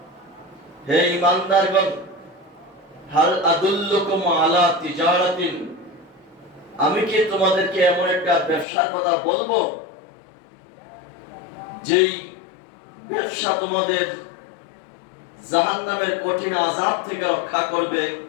হে ঈমানদারগণ, হাল আদুল্লুকুম আলা তিজারাতিন, আমি কি তোমাদেরকে এমন একটা ব্যবসার কথা বলবো যেই ব্যবসা তোমাদের জাহান্নামের কঠিন আযাব থেকে রক্ষা করবে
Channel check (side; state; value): right; drops out; at 8.7 s